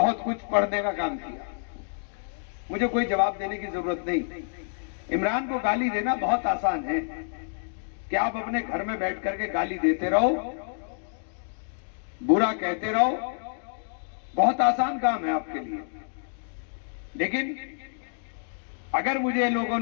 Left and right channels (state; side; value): silent; right; digital silence